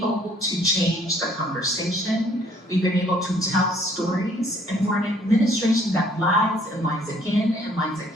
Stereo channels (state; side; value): normal; both; correlation 0.61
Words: to change the conversation. We've been able to tell stories. And for an administration that lies and lies again and lies